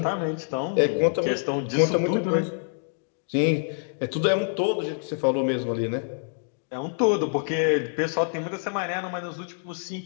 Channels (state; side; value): silent; right; 61 dB below the other